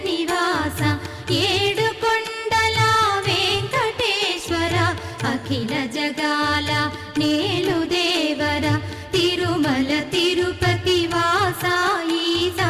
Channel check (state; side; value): identical; both; correlation 1.00